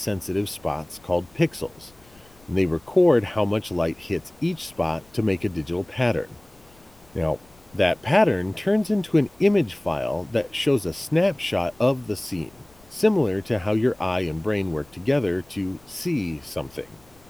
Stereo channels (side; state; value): left; noise; rumble, 28 dB below the sound